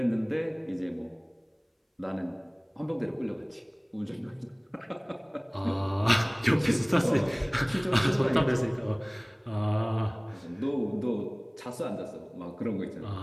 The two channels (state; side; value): identical; both; correlation 1.00